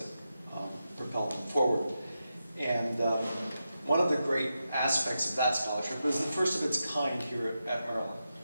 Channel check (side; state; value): both; inverted; correlation -0.88